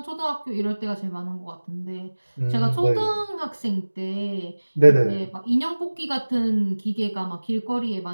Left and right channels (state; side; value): inverted; both; correlation -1.00